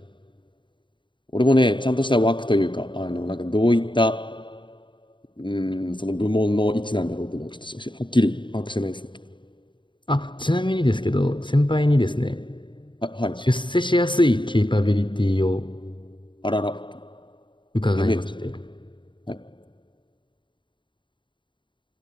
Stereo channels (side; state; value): right; late; 0.23 ms